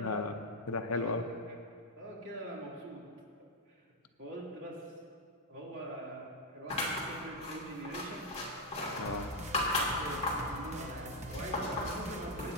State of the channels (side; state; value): both; normal; correlation 0.01